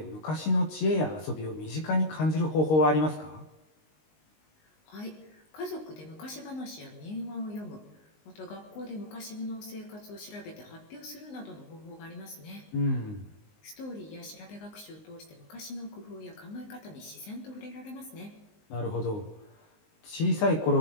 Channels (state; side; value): late; right; 19 ms